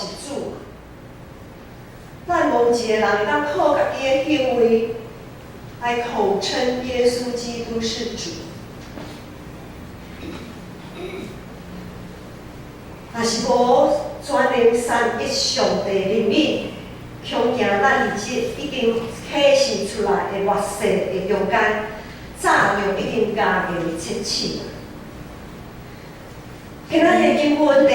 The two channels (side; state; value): both; identical; correlation 1.00